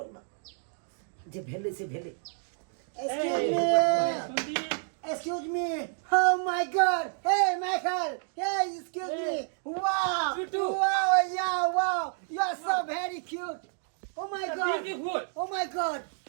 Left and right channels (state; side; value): silent; left; 57 dB below the other